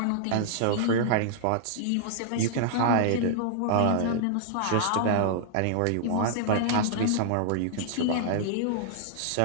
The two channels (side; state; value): both; different; correlation -0.01